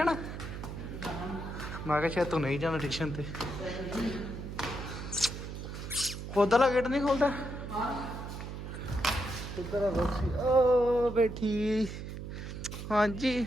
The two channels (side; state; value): right; noise; hum, 8 dB below the sound